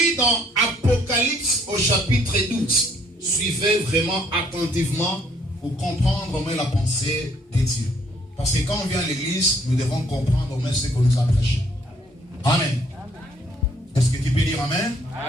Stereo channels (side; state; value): both; normal; correlation 0.64